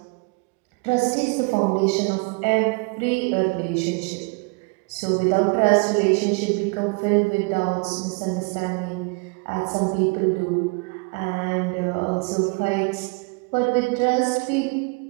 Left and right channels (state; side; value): quieter; left; 31.5 dB